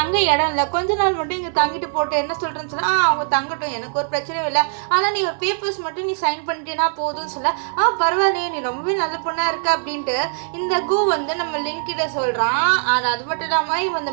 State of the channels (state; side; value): silent; left; 58 dB below the other